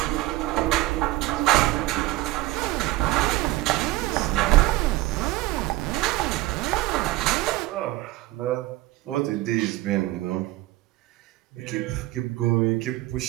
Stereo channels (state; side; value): quieter; left; 18.0 dB